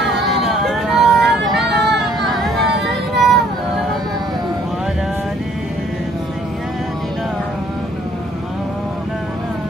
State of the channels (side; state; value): both; normal; correlation 0.61